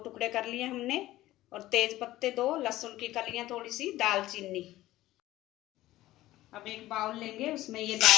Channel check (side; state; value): right; quieter; 16.0 dB